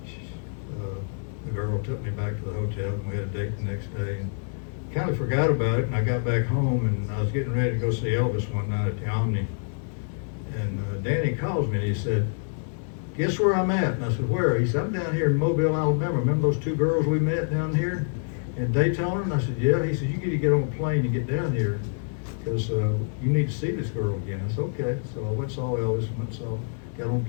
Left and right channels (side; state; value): right; silent; digital silence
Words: the girl took me back to the hotel, and we had a date the next day. And kind of forgot about it, and I got back home, and I was getting ready to go see Elvis one night at the Omni. And Danny calls me, and he said, "Guess where I'm at?" And I said, "Where?" He said, "I'm down here in Mobile, Alabama. Remember those 2 girls we met down here in Daytona?" And I said, "Yeah." He said, "You need to get on a plane and get down here because you need to see this girl again." I said, "Okay." So I went and saw Elvis, got on a